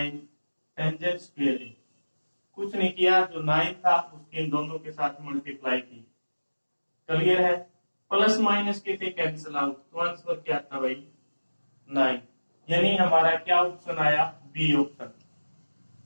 टेंजेंट स्क्वायर ए। कुछ नहीं किया, जो 9 था उसके इन दोनों के साथ मल्टीप्लाई की, क्लियर है। प्लस माइनस के थे कैंसिल आउट, तो आंसर क्या था भाई 9, यानी हमारा क्या ऑप्शन आया बी ऑप्शन।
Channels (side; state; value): both; inverted; correlation -1.00